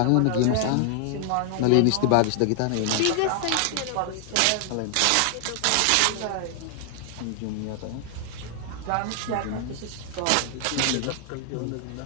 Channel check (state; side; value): different; both; correlation 0.00